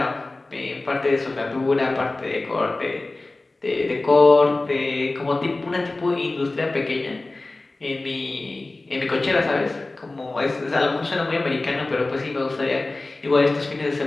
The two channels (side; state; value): right; quieter; 3.1 dB